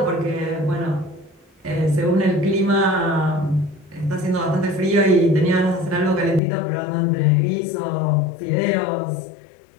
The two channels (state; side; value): drops out; right; at 6.4 s